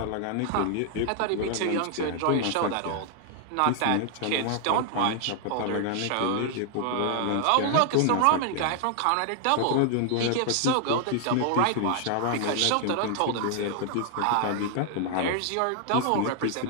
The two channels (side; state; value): both; different; correlation 0.00